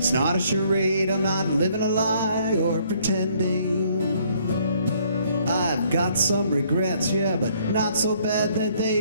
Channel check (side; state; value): both; inverted; correlation -0.64